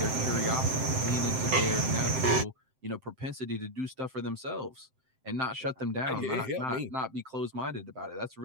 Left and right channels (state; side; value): late; left; 7.7 ms